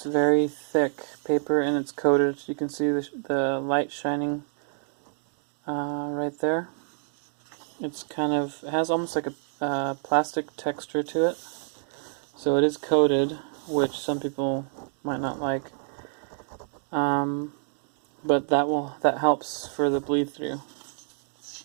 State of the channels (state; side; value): silent; left; 60 dB below the other